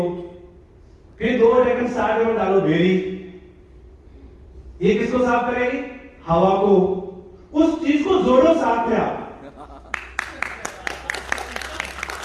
फिर 2 ढक्कन 60 ml डालो बेरी, ये किसको साफ करेगी? हवा को। उस चीज को जोड़ो साथ में आप।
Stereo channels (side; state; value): both; identical; correlation 1.00